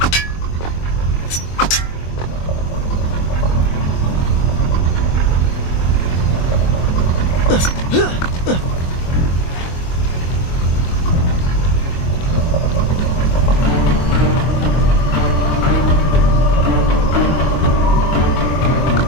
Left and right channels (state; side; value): late; right; 24 ms